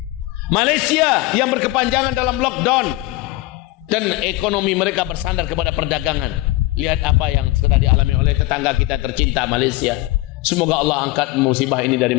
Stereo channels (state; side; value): quieter; right; 18.8 dB